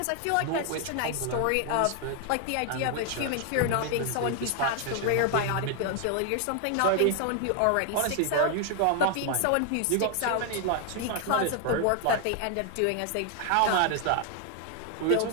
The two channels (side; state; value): both; different; correlation 0.00